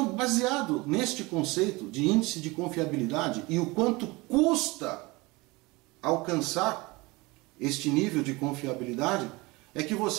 baseado neste conceito de índice de confiabilidade e o quanto custa alcançar este nível de confiabilidade, é que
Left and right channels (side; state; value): left; quieter; 23.4 dB